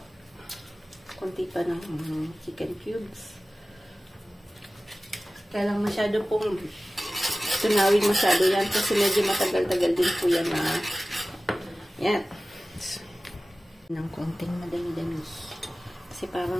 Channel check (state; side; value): normal; both; correlation 0.97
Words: Konti pa ng chicken cubes. Kaya lang masyado pong tunawin masyado yan kasi medyo matagal-tagal din po yan na yan. Ng konting madami-dami. Kasi